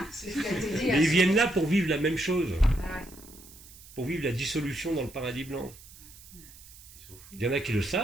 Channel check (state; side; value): noise; right; hiss, 20 dB below the sound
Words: C'est ce qui a été dit. Mais ils viennent là pour vivre la même chose, Ah, pour vivre la dissolution dans le paradis blanc. Il y en a qui le